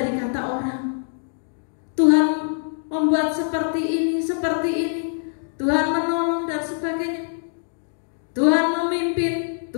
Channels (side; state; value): right; silent; digital silence